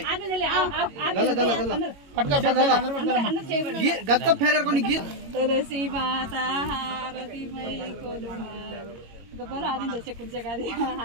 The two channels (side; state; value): left; late; 22 ms